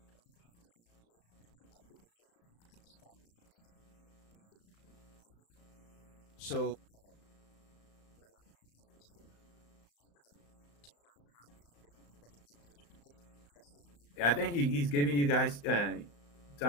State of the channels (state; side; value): late; right; 35 ms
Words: So I think he's giving you guys time.